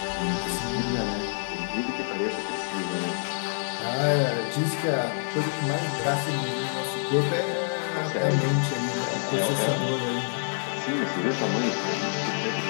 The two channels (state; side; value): silent; right; digital silence